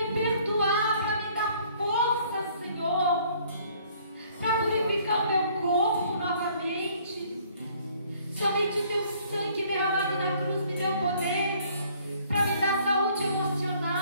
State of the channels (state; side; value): inverted; both; correlation -0.60